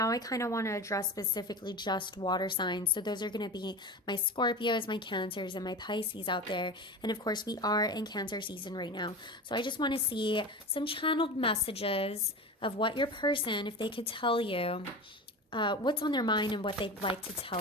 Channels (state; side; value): normal; both; correlation 0.29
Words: I kind of want to address specifically just water signs. So those are going to be my Scorpios, my Cancers, and my Pisces out there. And of course, we are in Cancer season right now. So I just want to see some channeled messages of what your person, if they could tell you what's on their mind and what they'd like to